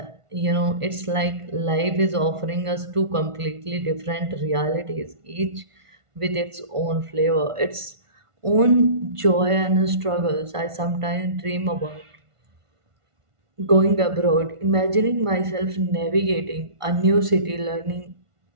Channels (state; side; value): late; left; 1.5 ms